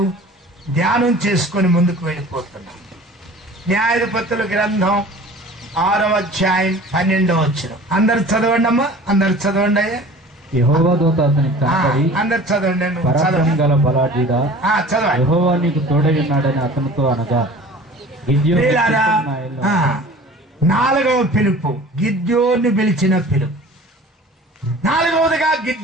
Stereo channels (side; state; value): both; normal; correlation 0.44